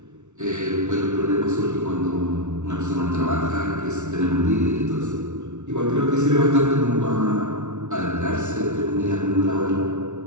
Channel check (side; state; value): left; late; 0.83 ms